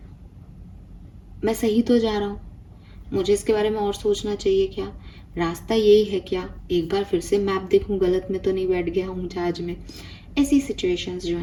मैं सही तो जा रहा हूँ, मुझे इसके बारे में और सोचना चाहिए, क्या रास्ता यही है, क्या एक बार फिर से मैप देखूं, गलत में तो नहीं बैठ गया हूँ जहाज में। ऐसी सिचुएशंस जो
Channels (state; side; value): identical; both; correlation 1.00